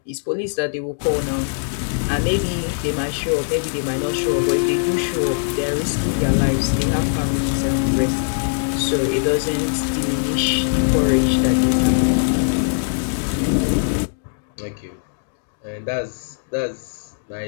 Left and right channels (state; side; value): silent; right; digital silence